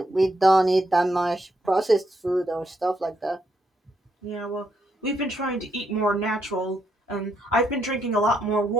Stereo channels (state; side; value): normal; both; correlation 0.78